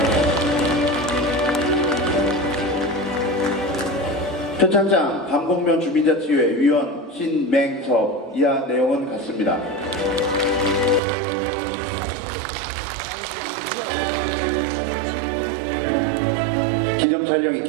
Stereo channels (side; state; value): left; drops out; at 11.0 s